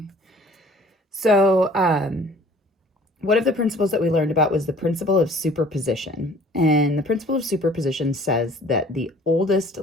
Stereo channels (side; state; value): both; normal; correlation 0.53